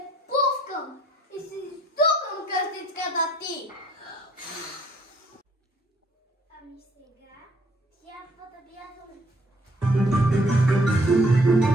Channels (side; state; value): both; normal; correlation 0.63